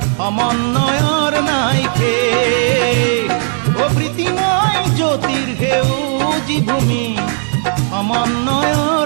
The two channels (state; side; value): silent; left; 68 dB below the other